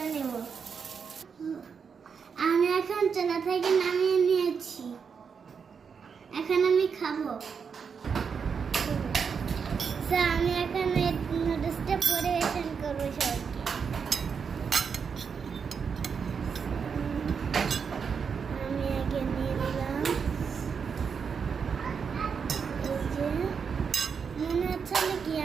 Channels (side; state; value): left; quieter; 6.2 dB